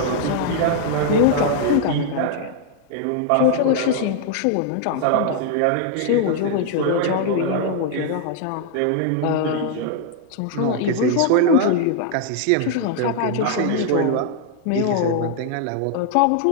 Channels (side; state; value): both; different; correlation 0.00